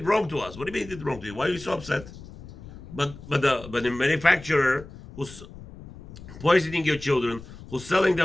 wrong to us. What do you mean he did wrong to you? Why are you so upset? But the manufacturer who's poisoning your children, who's selling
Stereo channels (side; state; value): left; noise; rumble, 16 dB below the sound